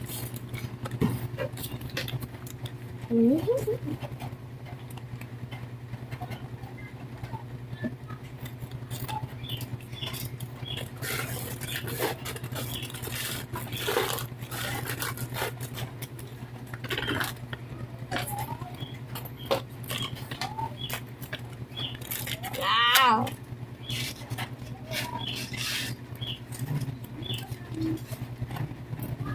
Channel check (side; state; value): both; identical; correlation 1.00